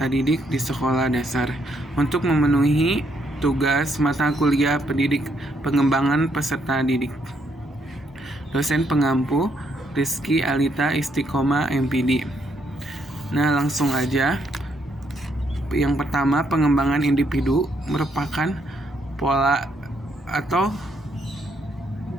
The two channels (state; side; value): normal; both; correlation 0.74